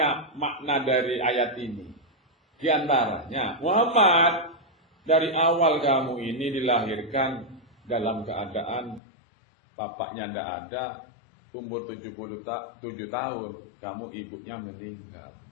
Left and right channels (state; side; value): drops out; right; at 9.0 s